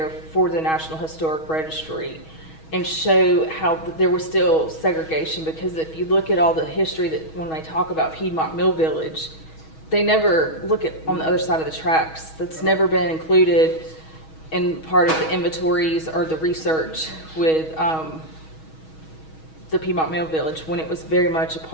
for the National Historic Registry and show how there was still segregation, because if you look at all the history that when they talk about Piedmont Mill Village, they never look at on the other side of the tracks. That's never been included in part of the inventories or the research with the Piedmont Mill Village, when it was very much a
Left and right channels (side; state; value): right; late; 6.3 ms